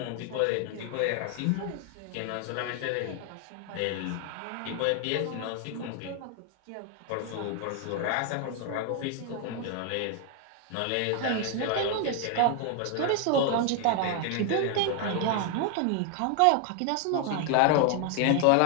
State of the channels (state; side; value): different; both; correlation 0.01